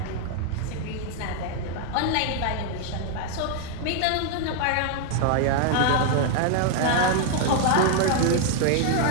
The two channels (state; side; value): different; both; correlation 0.00